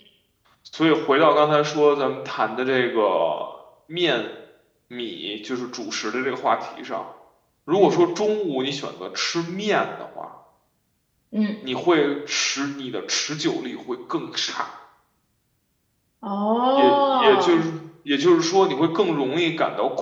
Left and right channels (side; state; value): both; identical; correlation 1.00